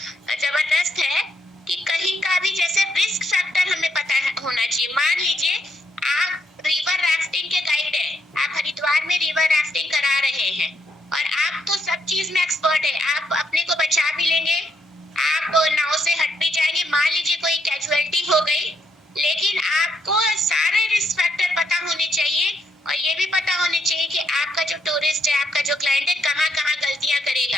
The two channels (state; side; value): normal; both; correlation 0.74